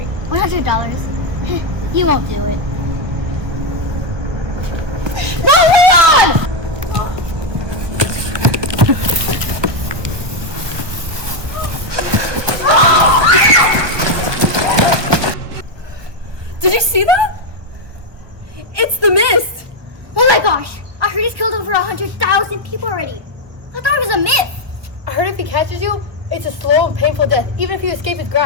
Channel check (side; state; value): left; late; 1.2 ms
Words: $100. You won't do it. No, Leon! Did you see that? It's the mist! Oh my gosh! I heard he's killed over 100,000 people already. I thought it was a myth. I heard if he catches you, it's a slow and painful death, even if you escape his